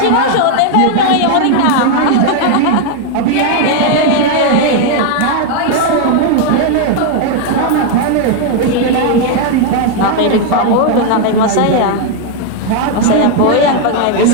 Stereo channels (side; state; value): both; different; correlation 0.00